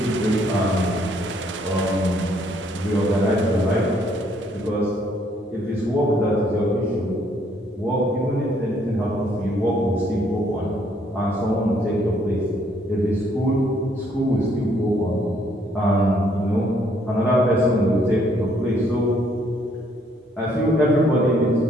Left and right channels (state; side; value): normal; both; correlation 0.67